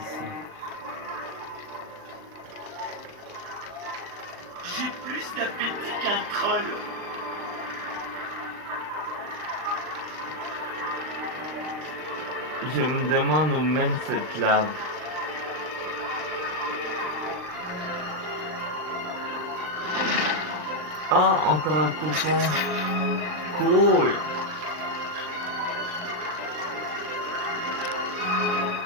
J'ai plus d'appétit qu'un troll. Je me demande où mène cette lave. Ah, encore un coupon. Cool.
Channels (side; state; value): left; late; 39 ms